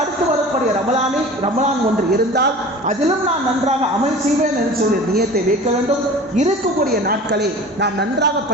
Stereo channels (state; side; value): normal; both; correlation 0.39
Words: வரக்கூடிய ரமலான் ஒன்று இருந்தால் அதிலும் நான் நன்றாக அமல் செய்வேன் என்று சொல்லி நியத்தை வைக்க வேண்டும். இருக்கக்கூடிய நாட்களை நாம் நன்றாக